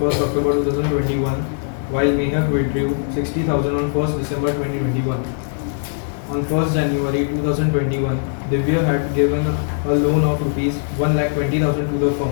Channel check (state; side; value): silent; right; 57 dB below the other